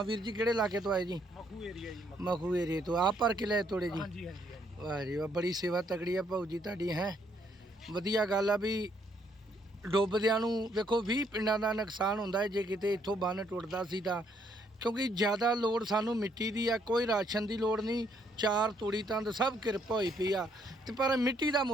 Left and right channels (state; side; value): normal; both; correlation 0.70